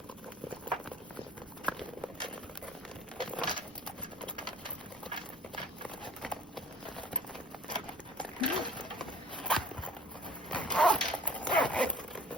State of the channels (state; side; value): normal; both; correlation 0.51